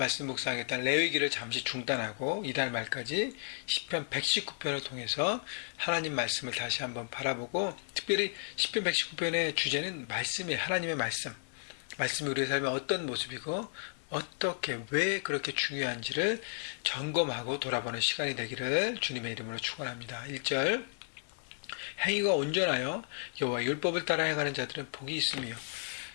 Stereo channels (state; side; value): silent; right; 55 dB below the other